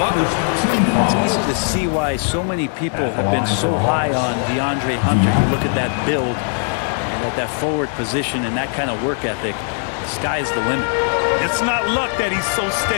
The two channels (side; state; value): right; silent; 56 dB below the other